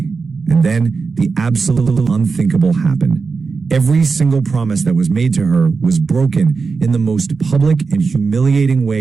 and then the absolute unthinkable happened. Every single promise that was made to her was broken in the most public and humiliating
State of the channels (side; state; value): left; quieter; 4.8 dB